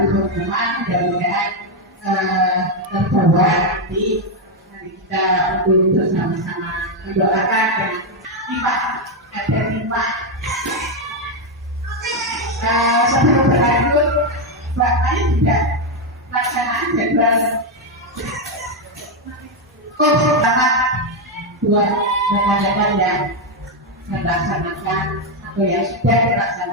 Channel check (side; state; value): both; normal; correlation 0.04